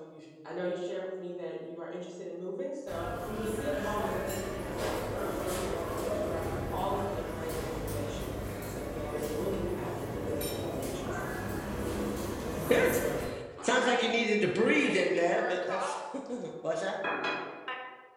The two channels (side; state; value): both; identical; correlation 1.00